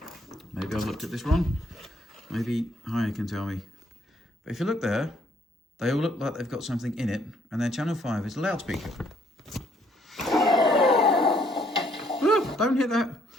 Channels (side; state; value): both; normal; correlation 0.66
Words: Maybe I've looked at this wrong. Maybe Haya can tell me. But if you look there, they all look like they've got something in it, and then channel 5 is a loudspeaker. Oh, don't hit that.